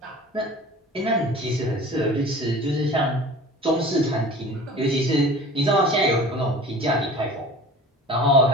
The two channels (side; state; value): both; normal; correlation 0.41